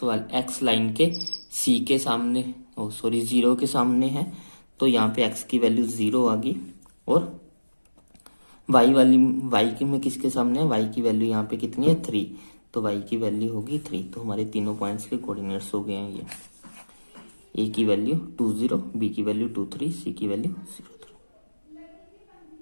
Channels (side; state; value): both; inverted; correlation -1.00